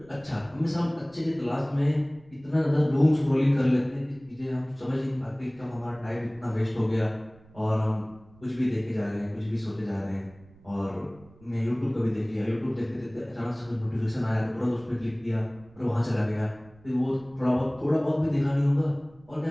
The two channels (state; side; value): noise; right; rumble, 25 dB below the sound